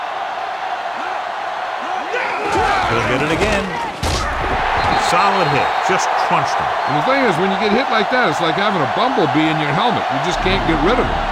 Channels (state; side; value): identical; both; correlation 1.00